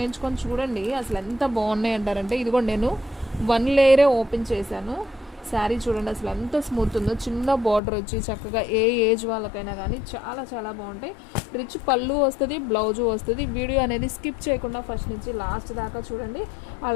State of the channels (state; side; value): drops out; right; at 7.8 s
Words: చూడండి అసలు ఎంత బాగున్నాయి అంటారంటే. ఇదిగోండి నేను 1 లేయరే ఓపెన్ చేశాను. శారీ చూడండి అసలు ఎంత స్మూత్ ఉందో. చిన్న బార్డర్ వచ్చి చక్కగా ఏ ఏజ్ వాళ్ళకైనా కానీ చాలా బాగుంటాయి. రిచ్ పళ్ళు వస్తుంది, బ్లౌజు వస్తుంది. వీడియో అనేది స్కిప్ చేయకుండా ఫస్ట్ నుంచి లాస్ట్ దాకా చూడండి.